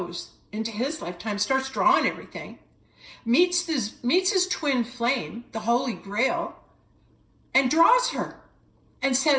into his lifetime, starts drawing everything, meets his twin flame, the Holy Grail, and draws her and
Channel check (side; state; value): both; identical; correlation 1.00